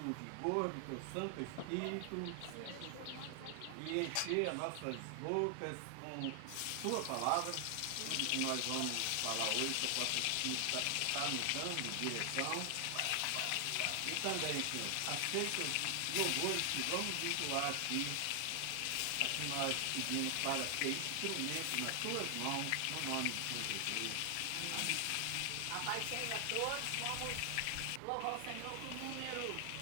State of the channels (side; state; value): both; different; correlation 0.00